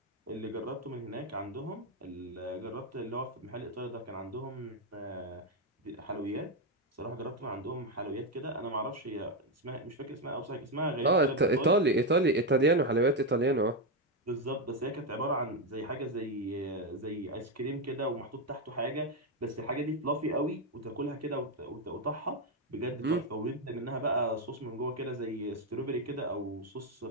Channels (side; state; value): both; normal; correlation 0.06